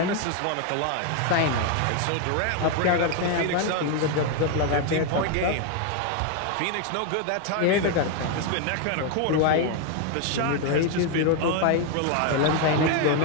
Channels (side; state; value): both; different; correlation 0.01